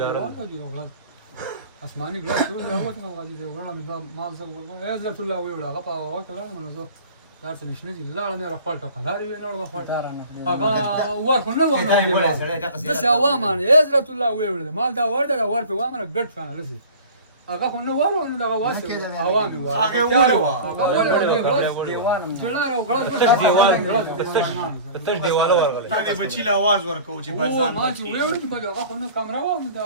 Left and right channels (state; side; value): inverted; both; correlation -0.40